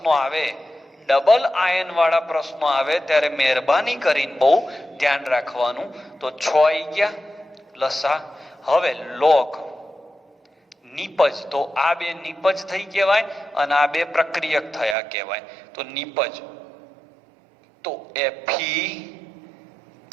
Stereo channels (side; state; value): left; drops out; at 15.0 s